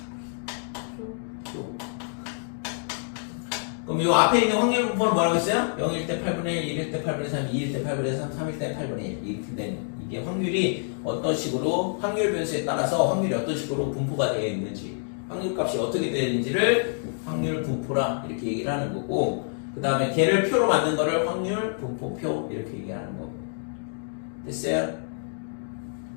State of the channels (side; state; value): right; silent; digital silence